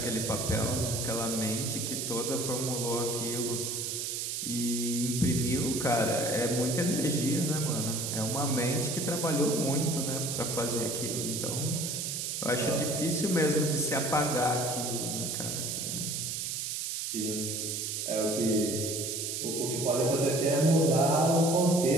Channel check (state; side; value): noise; right; hiss, 3 dB below the sound